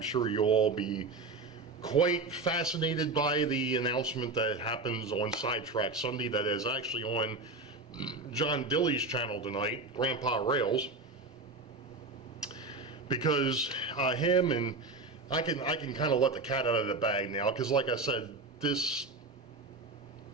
sure you'll all be quite fascinated by the announcement that happens on Sidetrack Sunday that is actually on John Dilly's channel tonight, Grandpa Rails, because him and I can kind of let the cat out of the bag now, because like I said, this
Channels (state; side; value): quieter; left; 3.4 dB